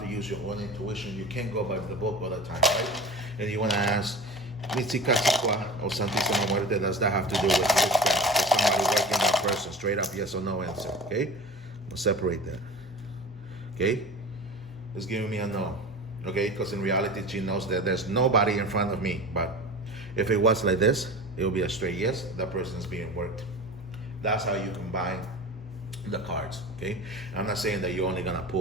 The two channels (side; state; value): both; normal; correlation 0.34